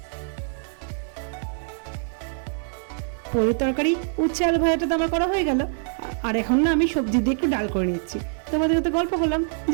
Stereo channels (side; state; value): left; silent; 62 dB below the other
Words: পনির তরকারি উচ্ছে আলু ভাজাটা তো আমার করা হয়ে গেল। আর এখন না আমি সবজি দিয়ে একটু ডাল করে নিচ্ছি। তোমাদের সাথে গল্প করলাম